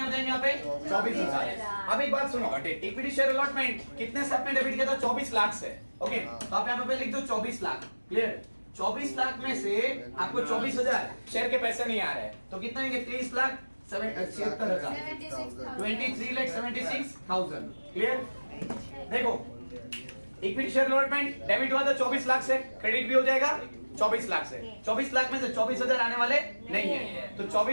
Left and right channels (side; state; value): both; inverted; correlation -1.00